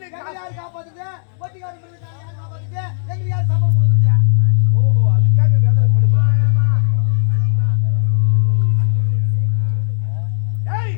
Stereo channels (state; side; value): silent; right; digital silence